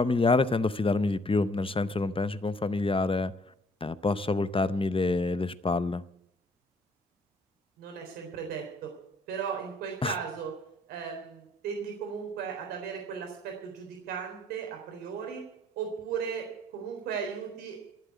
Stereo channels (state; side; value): normal; both; correlation 0.62